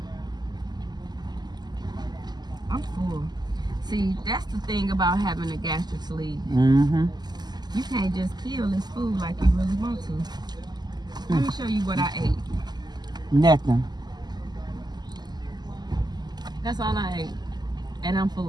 I'm full. See, that's the thing about having a gastric sleeve. You can't just kill this food like you really want to. Let me show you what I ate. Nothing. That's all I ate. And I'm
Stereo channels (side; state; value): left; late; 0.20 ms